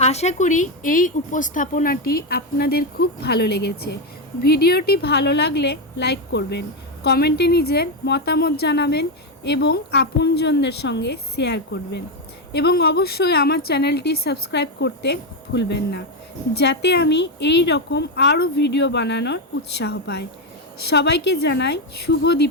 আশা করি এই উপস্থাপনাটি আপনাদের খুব ভালো লেগেছে। ভিডিওটি ভালো লাগলে লাইক করবেন, কমেন্টে নিজের মতামত জানাবেন এবং আপনজনদের সঙ্গে শেয়ার করবেন এবং অবশ্যই আমার চ্যানেলটি সাবস্ক্রাইব করতে ভুলবেন না, যাতে আমি এই রকম আরও ভিডিও বানানোর উৎসাহ পাই। সবাইকে জানাই শুভ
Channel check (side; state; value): both; normal; correlation 0.07